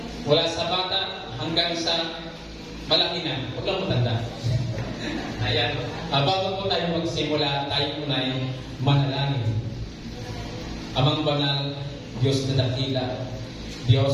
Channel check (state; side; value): identical; both; correlation 1.00